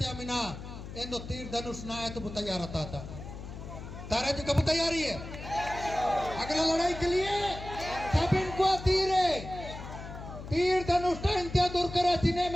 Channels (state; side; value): noise; left; hum, 11 dB below the sound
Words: था मिना एंदो तीर धनुष ना है तो तैयार रहता था तारा जी कब तैयारी है अगला लड़ाई के लिए सब इनको तीर धनुष इंत्या दूर करा जिने